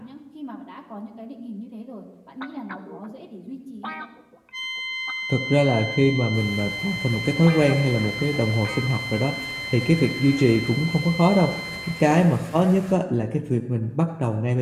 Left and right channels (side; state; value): both; identical; correlation 1.00